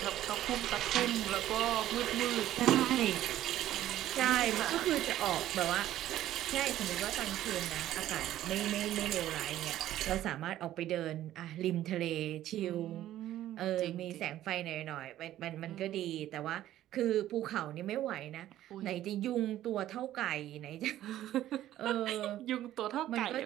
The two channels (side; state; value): left; quieter; 13.2 dB